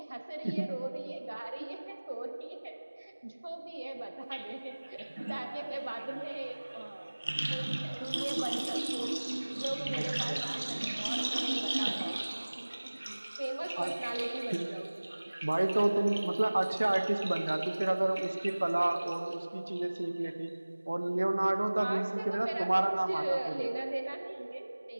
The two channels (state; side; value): inverted; both; correlation -1.00